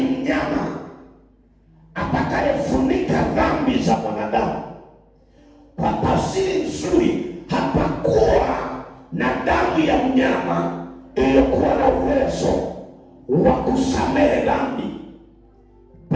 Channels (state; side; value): identical; both; correlation 1.00